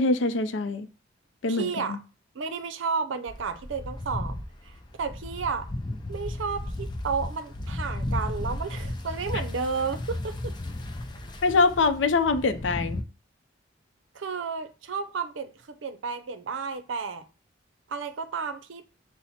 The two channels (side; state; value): both; normal; correlation -0.09